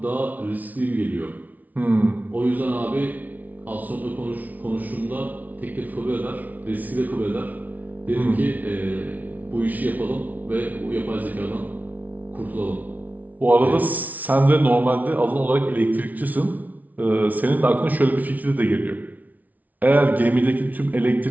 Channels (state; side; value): late; left; 0.075 ms